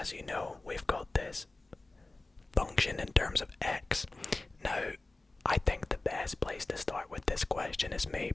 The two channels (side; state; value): right; quieter; 3.0 dB